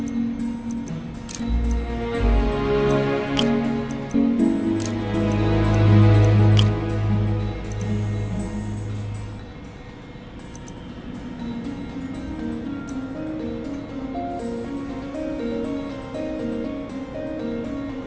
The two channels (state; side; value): identical; both; correlation 1.00